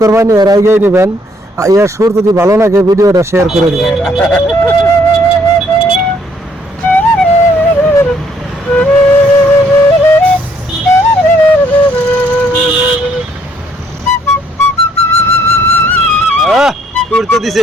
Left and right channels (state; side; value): normal; both; correlation 0.67